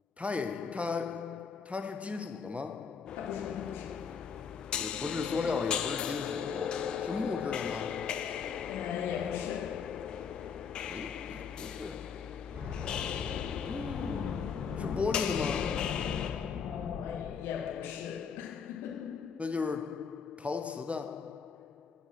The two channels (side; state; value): right; quieter; 6.3 dB